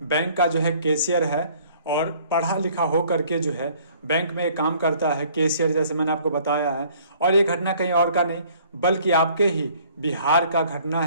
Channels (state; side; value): inverted; both; correlation -0.57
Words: बैंक का जो है कैशियर है और पढ़ा लिखा हो करके जो है बैंक में काम करता है कैशियर, जैसे मैंने आपको बताया है। और ये घटना कहीं और का नहीं बल्कि आपके ही बिहार का घटना